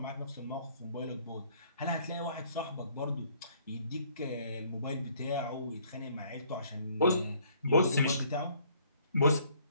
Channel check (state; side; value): inverted; both; correlation -0.61